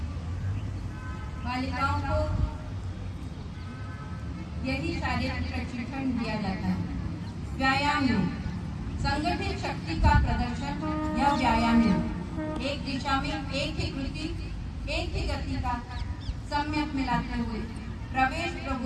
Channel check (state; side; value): identical; both; correlation 1.00